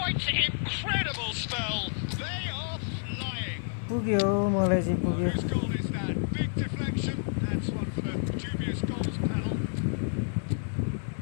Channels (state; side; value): silent; right; digital silence